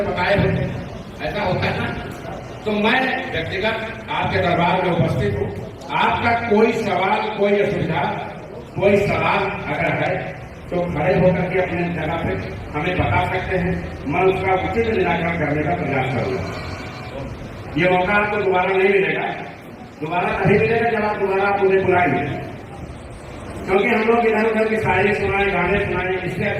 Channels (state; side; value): identical; both; correlation 1.00